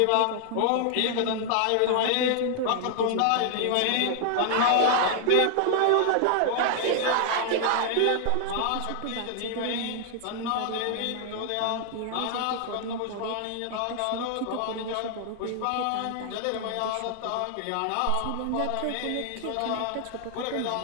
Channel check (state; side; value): different; both; correlation 0.00